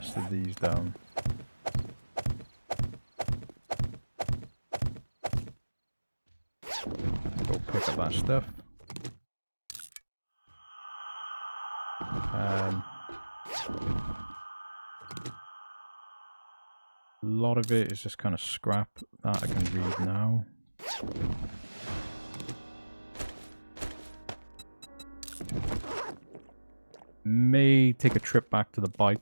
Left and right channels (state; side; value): inverted; both; correlation -1.00